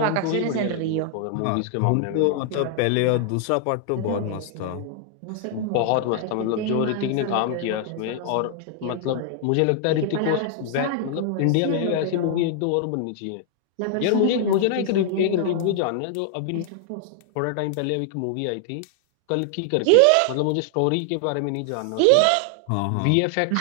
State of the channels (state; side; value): different; both; correlation 0.00